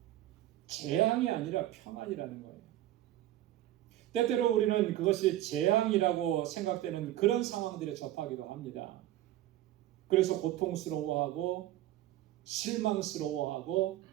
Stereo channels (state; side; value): quieter; left; 14.1 dB